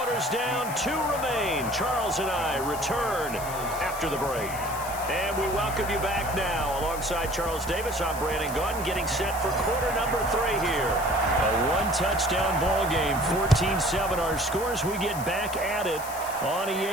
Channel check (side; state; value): left; noise; hiss, 12 dB below the sound